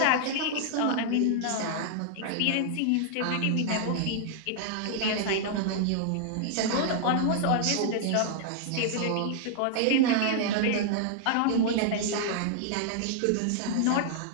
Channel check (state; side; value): different; both; correlation -0.01